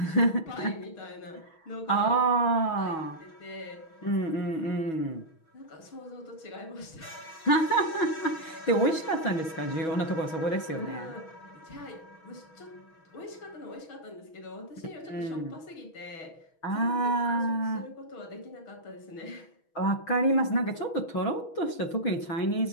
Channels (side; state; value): right; late; 6.2 ms